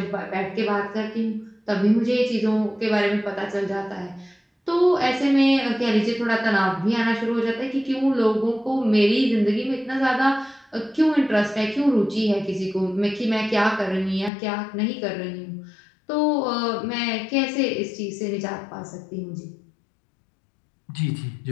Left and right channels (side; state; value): right; drops out; at 14.3 s